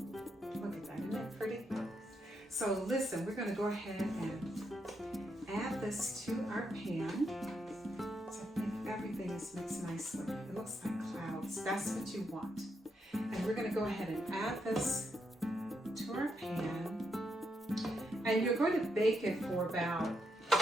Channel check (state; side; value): normal; both; correlation 0.80